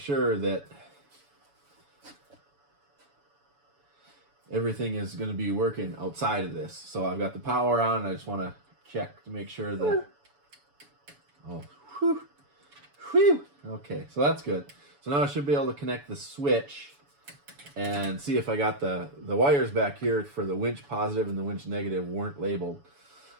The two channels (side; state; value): left; late; 7.0 ms